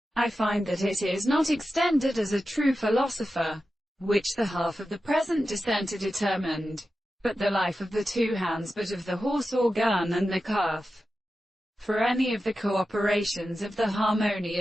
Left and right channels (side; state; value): both; normal; correlation 0.92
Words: I find that it is not extended as a true philosopher, which the half of the present dissenter determined, but the life of the two hands, but of the horse or gun and the calf. For any of the cooperations of the